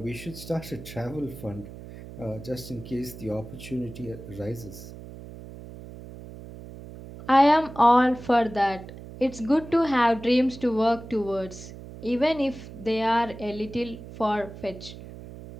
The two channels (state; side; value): noise; right; hum, 14 dB below the sound